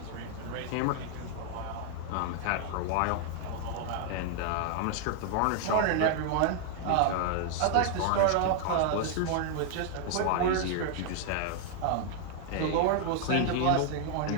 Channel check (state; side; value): different; both; correlation 0.00